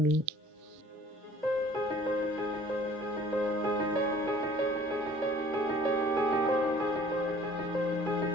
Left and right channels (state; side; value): normal; both; correlation 0.52